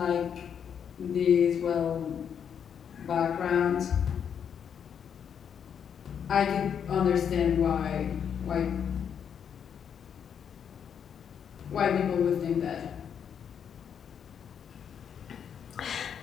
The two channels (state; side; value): quieter; right; 7.9 dB